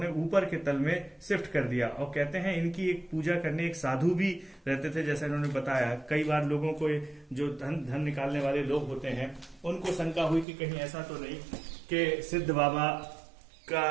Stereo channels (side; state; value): left; drops out; at 10.5 s